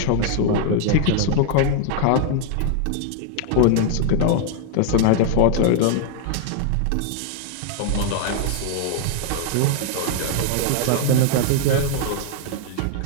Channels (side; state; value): both; different; correlation 0.00